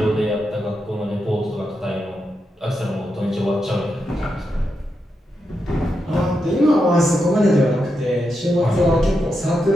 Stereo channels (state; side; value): normal; both; correlation 0.85